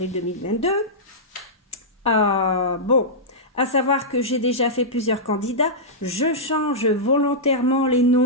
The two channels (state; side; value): normal; both; correlation -0.12